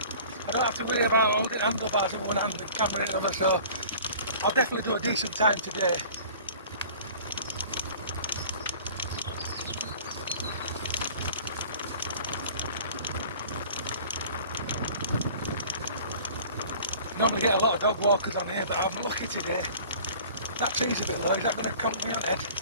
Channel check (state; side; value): inverted; both; correlation -0.45